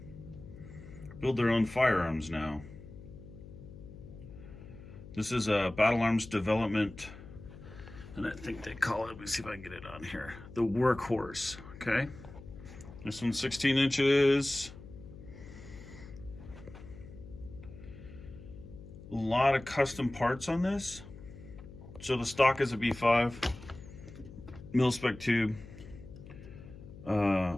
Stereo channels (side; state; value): left; noise; hum, 16 dB below the sound